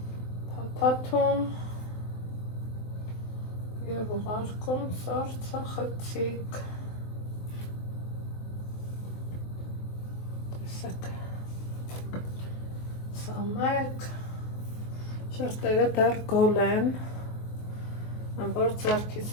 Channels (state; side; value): late; right; 23 ms